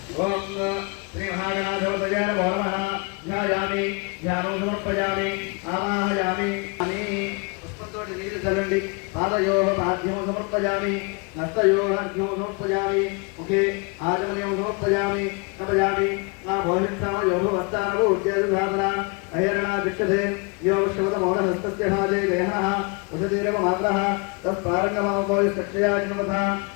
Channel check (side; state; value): right; quieter; 31.4 dB